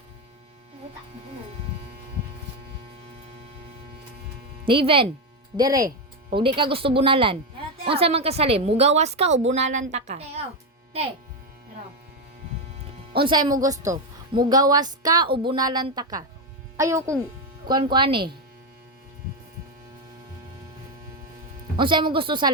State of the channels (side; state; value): both; normal; correlation 0.08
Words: Niven, dire. O di ka gusto bunalan. Unsa man kasalim, mugawas ka o bunalan ta ka? Te, oh. Te. Pero. Unsay mo gusto? Mugawas ka o bunalan ta ka? Ayaw kong kuan eh. Unsay mo gusto